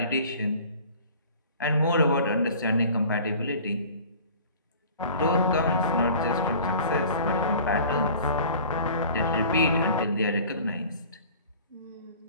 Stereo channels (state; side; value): inverted; both; correlation -0.45